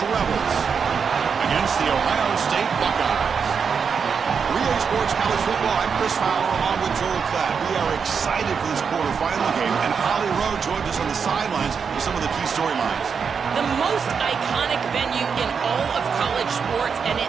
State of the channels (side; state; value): left; quieter; 6.2 dB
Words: Rebels against the Ohio State Buckeyes. Relay Sports College Football, I'm Chris Fowler along with Joel Klatt. We are excited for this quarterfinal game, and Holly Rowe joins us on the sidelines with some of the key storylines. The most iconic venue in all of college sports, and it